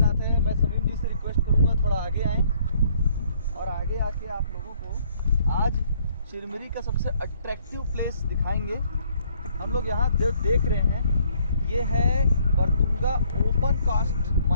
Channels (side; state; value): both; inverted; correlation -0.64